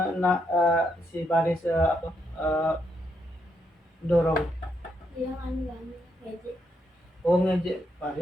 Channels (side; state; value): both; normal; correlation 0.78